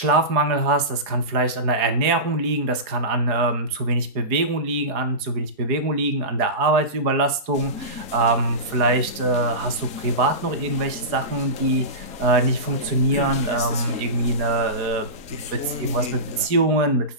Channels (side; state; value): left; late; 4.8 ms